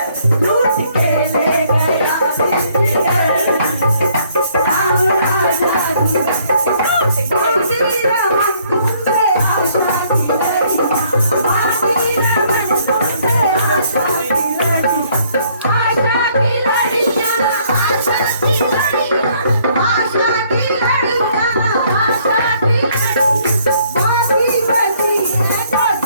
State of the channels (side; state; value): both; inverted; correlation -0.65